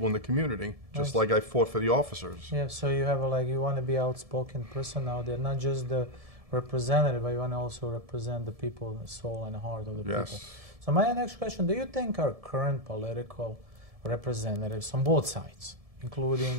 in the community, just like I fought for the officers. Yeah, so you have you want to be outspoken person out there, not just the representative, but you want to also represent the people, the soul and the heart of the people. So my next question, do you think our current political representatives on both sides,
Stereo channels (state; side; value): late; left; 1.7 ms